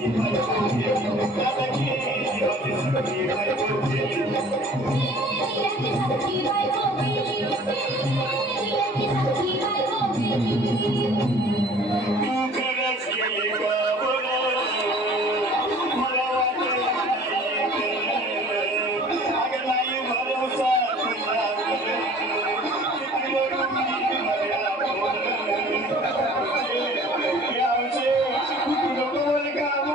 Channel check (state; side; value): normal; both; correlation 0.49